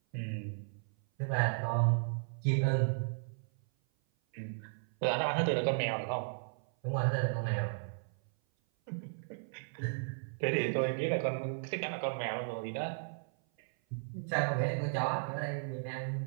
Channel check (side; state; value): left; silent; 54 dB below the other